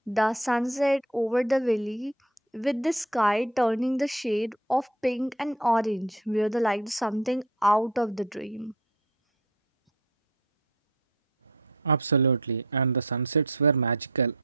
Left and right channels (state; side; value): normal; both; correlation 0.43